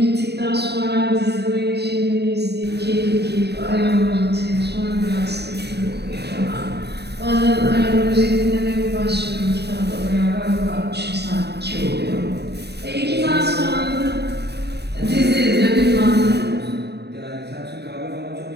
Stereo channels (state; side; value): late; left; 0.48 ms